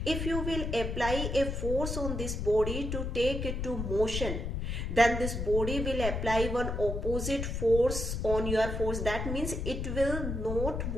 If you will apply a force on this body to take it to motion, then this body will apply one opposite force on your force. That means it will not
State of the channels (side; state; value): left; noise; rumble, 3 dB below the sound